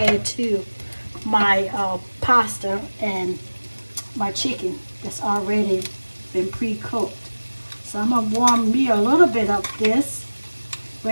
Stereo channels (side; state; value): both; inverted; correlation -1.00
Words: add to my pasta and my chicken that's already been pre-cooked. So I'm going to warm me a little bit of this